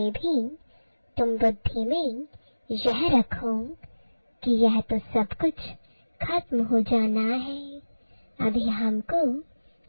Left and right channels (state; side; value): inverted; both; correlation -1.00